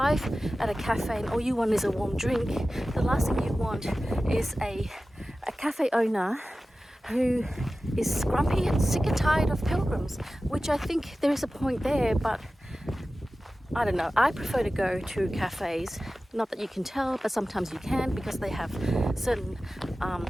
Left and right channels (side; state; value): both; normal; correlation 0.95